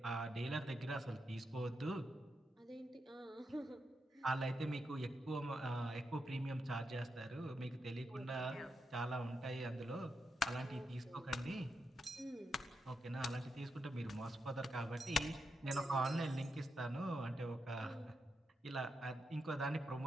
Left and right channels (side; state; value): both; normal; correlation 0.85